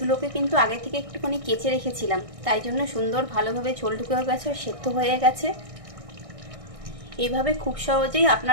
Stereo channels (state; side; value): late; left; 1.6 ms